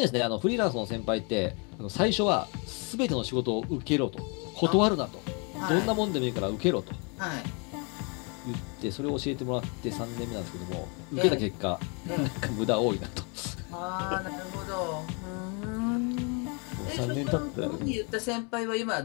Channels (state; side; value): quieter; right; 34.2 dB